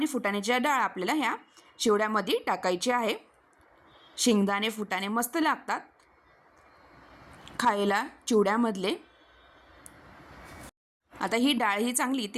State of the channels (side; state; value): both; identical; correlation 1.00